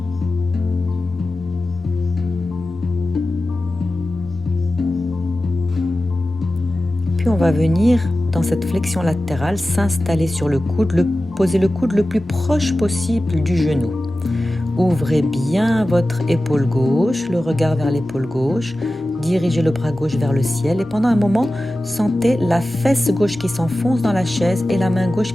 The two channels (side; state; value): both; normal; correlation 0.95